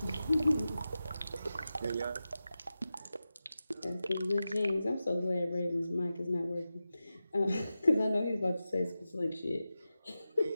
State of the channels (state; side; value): inverted; both; correlation -0.93